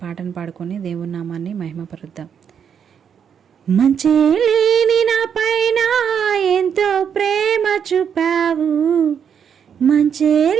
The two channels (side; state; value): left; quieter; 7.7 dB